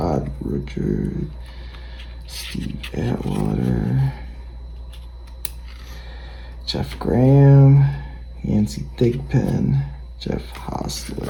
Richard, Steve Atwater, Jeff Graham, Yancey Thigpen, Jeff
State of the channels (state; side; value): identical; both; correlation 1.00